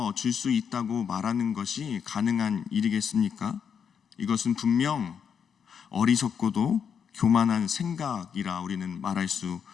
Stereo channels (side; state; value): right; quieter; 7.2 dB